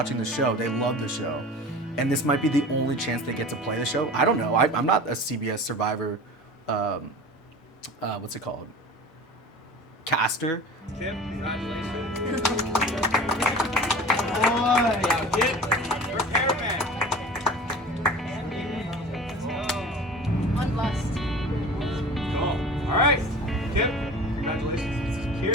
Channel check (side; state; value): both; normal; correlation 0.38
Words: the show. They love the show. And this might be the only chance they get to play the show. I don't know. I'm not a CBS Survivor, what's it called? Caster. Kip, congratulations. Boy. Repairman. Cool. All right. Kip, congratulations. You